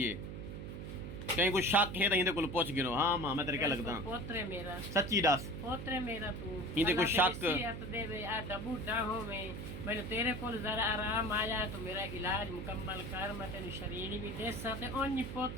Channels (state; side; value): noise; right; hum, 7 dB below the sound